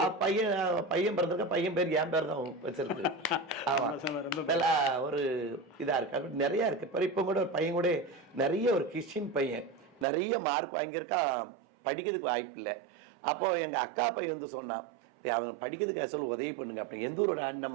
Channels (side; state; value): left; drops out; at 10.1 s